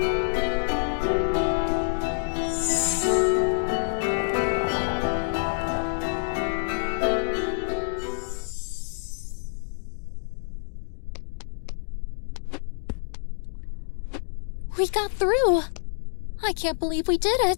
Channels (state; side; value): silent; right; digital silence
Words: We got through. I can't believe we did